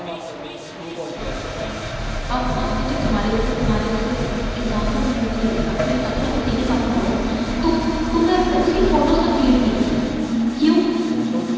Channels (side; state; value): both; identical; correlation 1.00